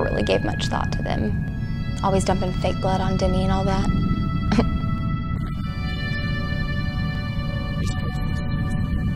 really gave much thought to them. Always dumping fake blood on Denny and all that.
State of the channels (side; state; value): both; identical; correlation 1.00